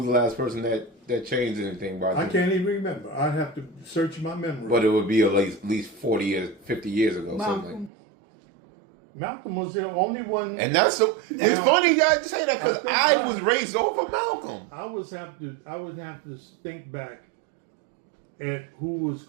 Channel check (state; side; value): drops out; left; at 7.9 s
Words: the last person that changed anything by I can't even remember. I'd have to search my memory. But it would be at least 40 years, 50 years ago. Something. Malcolm was the only one. And that's so. It's funny you guys say that because I think I was raised over Malcolm. I would have to think back at who was